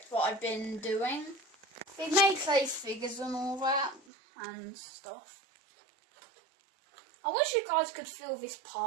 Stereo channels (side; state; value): left; drops out; at 4.0 s